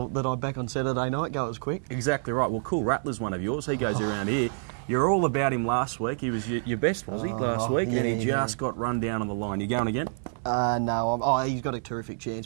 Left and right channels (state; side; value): silent; left; digital silence